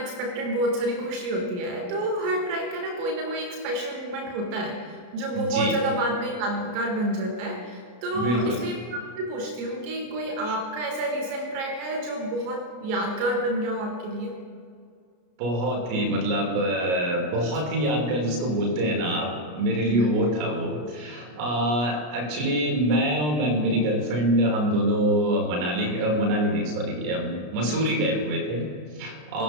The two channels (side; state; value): left; late; 33 ms